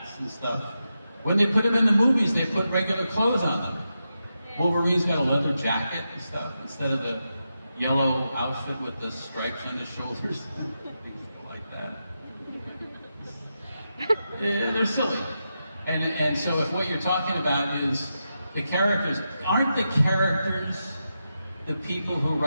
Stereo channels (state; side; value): inverted; both; correlation -0.88